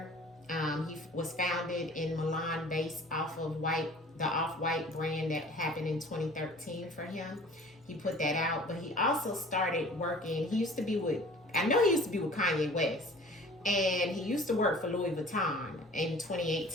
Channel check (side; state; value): both; normal; correlation 0.46